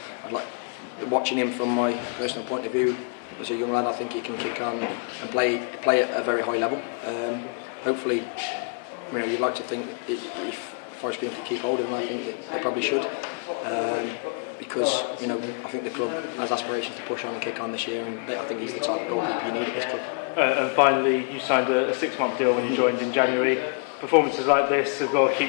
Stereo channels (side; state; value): right; quieter; 35.5 dB